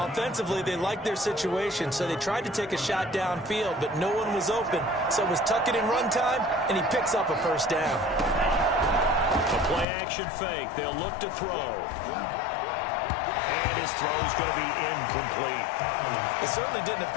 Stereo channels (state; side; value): drops out; right; at 9.9 s